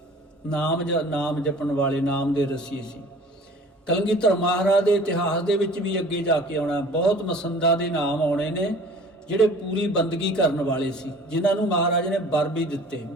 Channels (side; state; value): both; normal; correlation 0.47